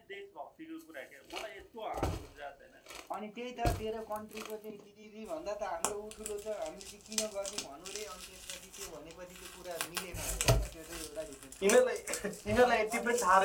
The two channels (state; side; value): identical; both; correlation 1.00